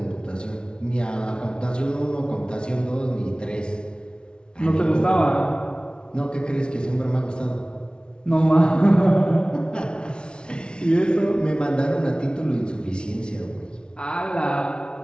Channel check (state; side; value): late; right; 0.055 ms